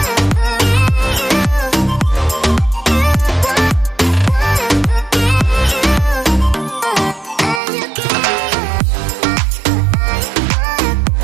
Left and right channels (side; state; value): left; drops out; at 7.6 s